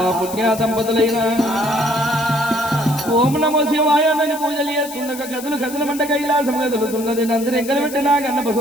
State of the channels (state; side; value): noise; left; hiss, 13 dB below the sound